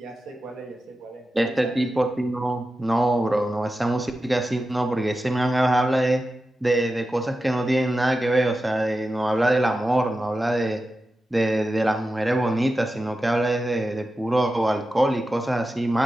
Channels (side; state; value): both; normal; correlation 0.92